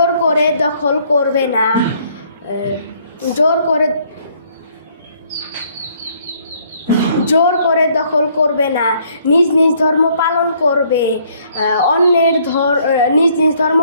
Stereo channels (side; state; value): both; inverted; correlation -0.64